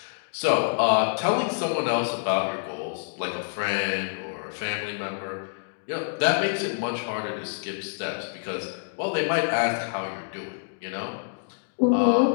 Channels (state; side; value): silent; right; digital silence